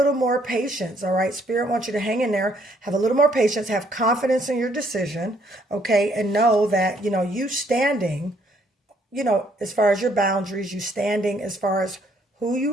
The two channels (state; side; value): normal; both; correlation 0.67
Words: more patience, all right? Spirit wants you to hang in there, have a little more patience, have confidence in your decision, okay? And know that, you standing, as far as your boundaries, you standing as far as who